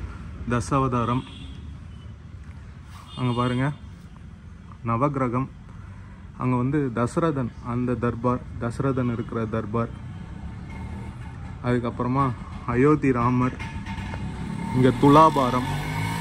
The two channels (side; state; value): both; identical; correlation 1.00